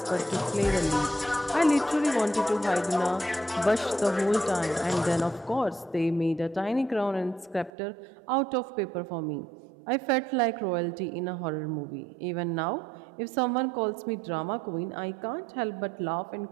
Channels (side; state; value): left; drops out; at 7.7 s